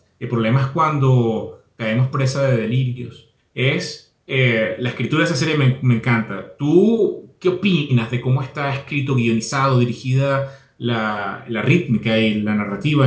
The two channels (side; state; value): both; identical; correlation 1.00